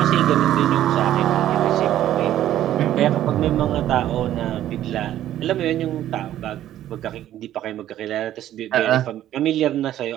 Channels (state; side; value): quieter; left; 12.4 dB